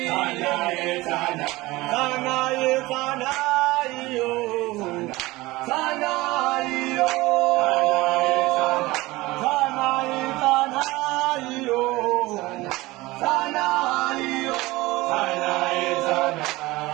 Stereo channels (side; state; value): left; quieter; 20.1 dB